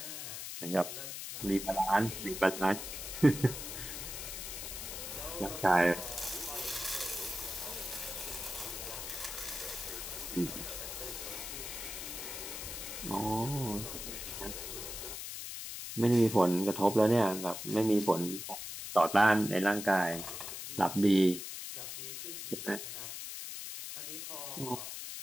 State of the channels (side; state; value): left; noise; hiss, 7 dB below the sound